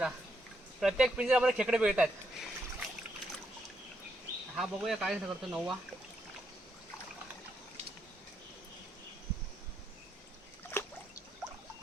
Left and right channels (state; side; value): normal; both; correlation 0.78